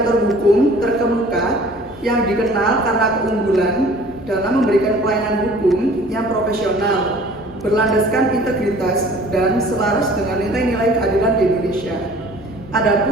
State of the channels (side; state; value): both; normal; correlation 0.50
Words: hukum terkemuka yang dikenal karena keunggulan dalam memberikan pelayanan hukum yang profesional, berlandaskan integritas dan selaras dengan nilai-nilai keadilan di Indonesia.